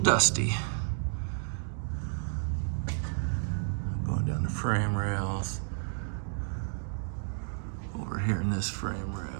Going down the frame rails. Over here in this frame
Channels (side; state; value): left; silent; digital silence